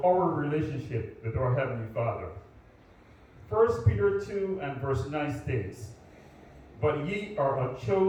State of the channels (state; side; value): identical; both; correlation 1.00